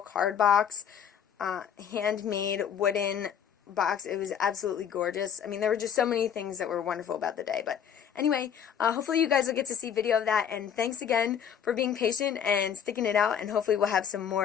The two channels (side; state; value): right; quieter; 8.4 dB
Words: box, handmade wooden box. It was absolutely gorgeous. I mean, there were just so many things that were wonderful about the day. But anyway, hopefully you guys will get to see video of that, and thanks again for being patient and sticking it out, and hopefully we'll have some